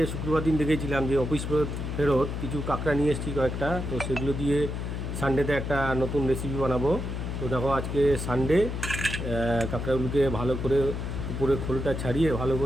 শুক্রবার দিন দেখেছিলাম যে অফিস ফেরত কিছু কাঁকড়া নিয়ে এসেছি কয়েকটা। তো সেগুলো দিয়ে সানডেতে একটা নতুন রেসিপি বানাবো। তো দেখো, আজকে সানডে। কাঁকড়াগুলোকে ভালো করে উপরে খোলটা ছাড়িয়ে ভালো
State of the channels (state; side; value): noise; left; hum, 4 dB below the sound